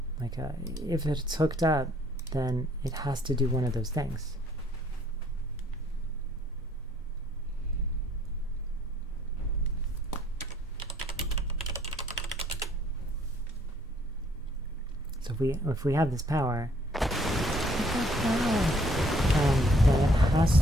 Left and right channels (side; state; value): both; normal; correlation 0.63